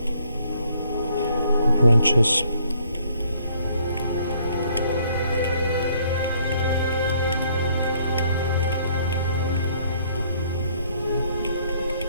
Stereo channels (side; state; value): both; inverted; correlation -0.65